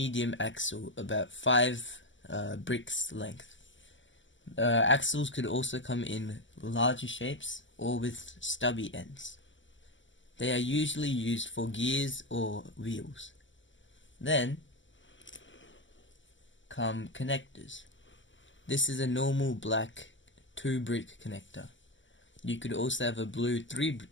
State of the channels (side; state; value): right; late; 0.55 ms